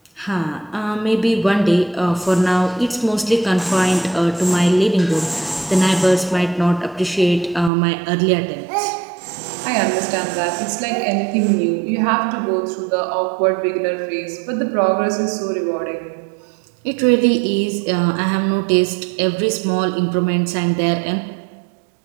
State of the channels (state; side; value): drops out; left; at 7.7 s